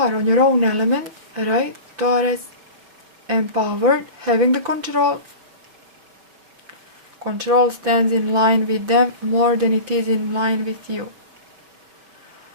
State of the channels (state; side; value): late; left; 5.7 ms